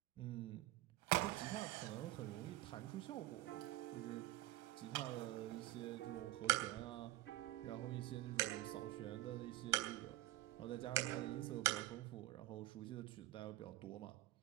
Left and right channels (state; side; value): quieter; left; 16.4 dB